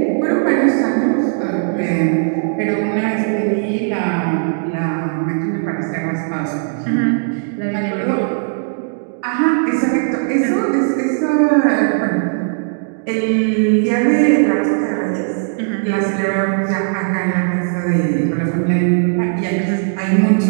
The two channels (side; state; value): left; silent; digital silence